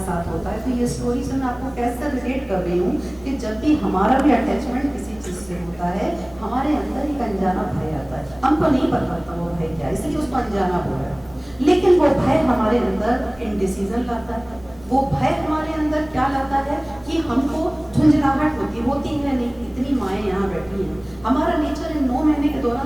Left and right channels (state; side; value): noise; right; hum, 24 dB below the sound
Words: साथ होता है। तो ये स्टोरी से मैं आपको कैसे रिलेट कर रही हूँ कि जब भी हमारा भी अटैचमेंट किसी चीज से होता है हमारे अंदर एक अनजाना भय आता है, हमको नहीं पता होता वो भय क्या, इसलिए उसको अनजाना बोल रहा है। लेकिन वो भय हमारे अंदर इनडिसीजन लाता है, वो भय हमारे अंदर क्या लाता है कि हमको झुंझलाहट होती है नहीं, इतनी माएँ यहाँ बैठी हैं, हमारा नेचर इन 9 महीने के